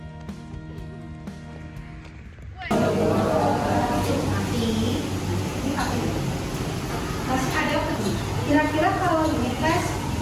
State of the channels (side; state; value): both; identical; correlation 1.00